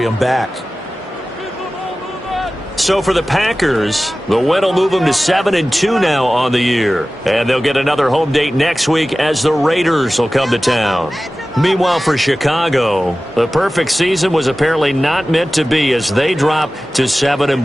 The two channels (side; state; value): both; normal; correlation 0.96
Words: back. So for the Packers, the win will move them to 7-2 now on the year. And they'll get another home date next week as the Raiders will come to town. Meanwhile, for Chicago, the perfect season was apparently not meant to be as they drop to